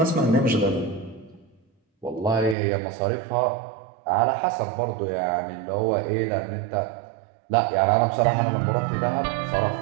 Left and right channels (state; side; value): drops out; left; at 2.6 s